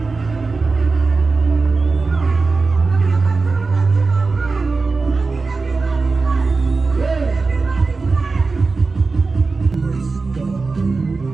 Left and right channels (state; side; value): quieter; left; 4.0 dB